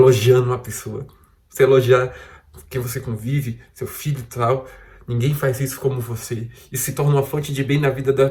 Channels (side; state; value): both; identical; correlation 1.00